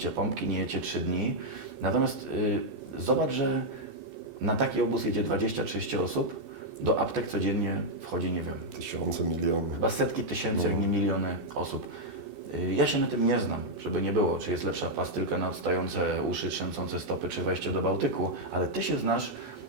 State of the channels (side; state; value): left; late; 2.7 ms